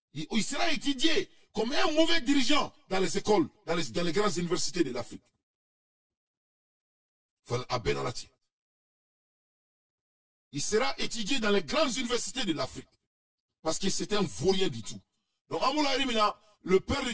Il sera étudié comme un mauvais dirigeant dans les écoles, dans les grandes universités de l'Afrique. Il sera étudié dans les grandes universités de l'Afrique. Parce que c'est un vaurien du tout. Donc, Amoula Rimina, le père de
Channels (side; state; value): both; identical; correlation 1.00